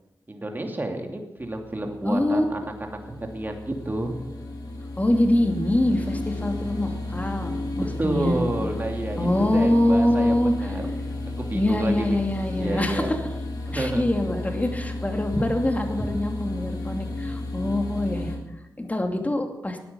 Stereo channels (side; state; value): both; normal; correlation 0.94